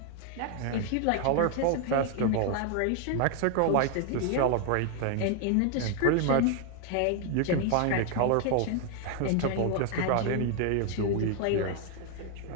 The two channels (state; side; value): different; both; correlation 0.00